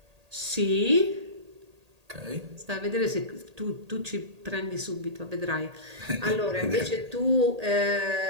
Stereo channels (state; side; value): late; left; 1.8 ms